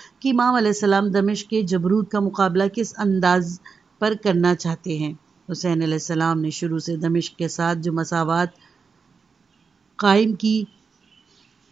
کہ امام علیہ السلام دمشق کے جبروت کا مقابلہ کس انداز پر کرنا چاہتے ہیں۔ حسین علیہ السلام نے شروع سے دمشق کے ساتھ جو مساوات قائم کی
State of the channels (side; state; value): left; quieter; 5.3 dB